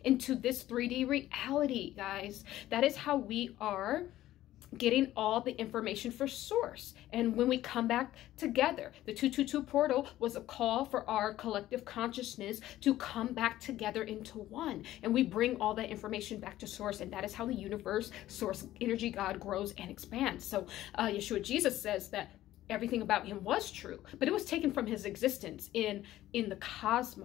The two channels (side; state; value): right; quieter; 14.4 dB